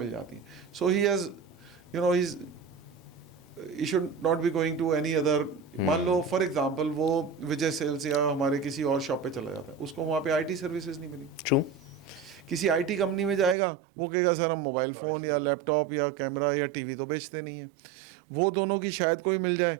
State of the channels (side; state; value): left; drops out; at 13.6 s